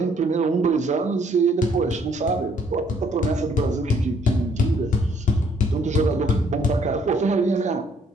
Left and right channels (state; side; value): normal; both; correlation 0.65